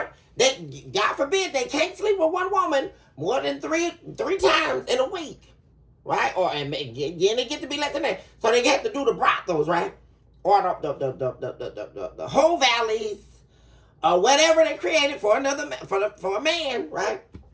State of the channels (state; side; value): identical; both; correlation 1.00